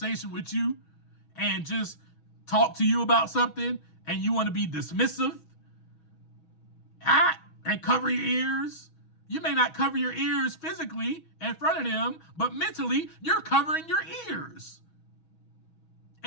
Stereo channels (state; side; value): late; right; 6.2 ms